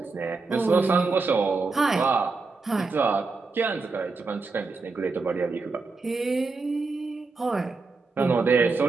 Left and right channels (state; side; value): quieter; left; 4.0 dB